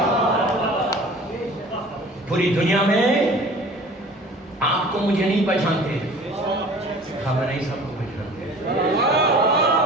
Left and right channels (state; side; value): normal; both; correlation 0.45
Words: پوری دنیا میں آپ کو مجھے نہیں پہچانتے, خامنہئی صاحب کو پہچانتے.